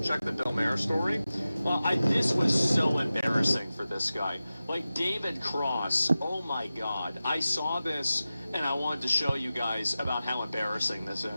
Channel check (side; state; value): both; inverted; correlation -0.95